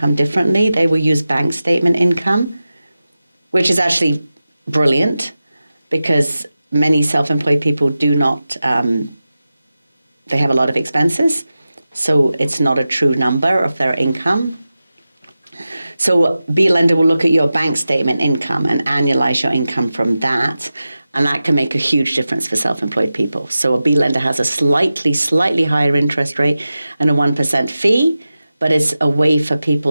differently. They will use bank statement income, which is actually brilliant, because many self-employed people do not, they have a lot of expenses, so it's not a true number of their income. So B lender will look at your bank statement income and annualize your income from that, and that can make a huge difference for self-employed people. So a B lender has a slightly higher interest rate and a 1% fee, but it's a way for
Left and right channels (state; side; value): inverted; both; correlation -0.94